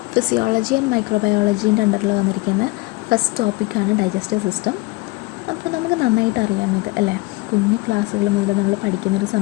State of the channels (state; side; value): quieter; right; 22.1 dB